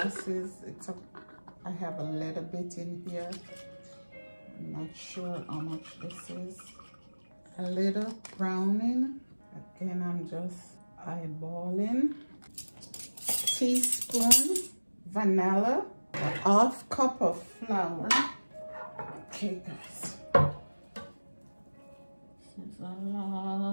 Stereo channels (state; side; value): inverted; both; correlation -1.00